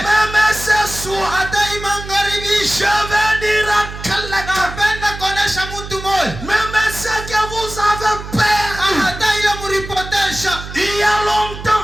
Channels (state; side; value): noise; right; hum, 11 dB below the sound